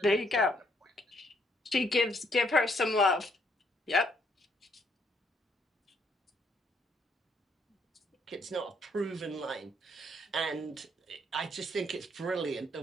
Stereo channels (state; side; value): normal; both; correlation 0.70